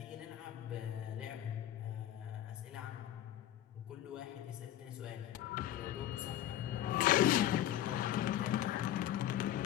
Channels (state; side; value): quieter; right; 12.3 dB